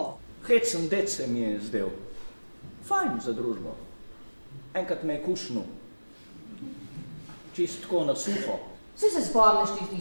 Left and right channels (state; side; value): inverted; both; correlation -1.00